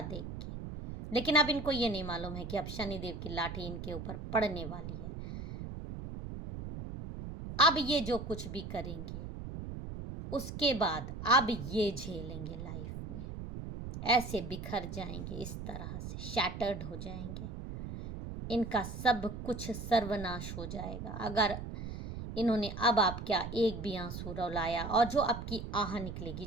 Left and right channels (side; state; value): right; noise; rumble, 8 dB below the sound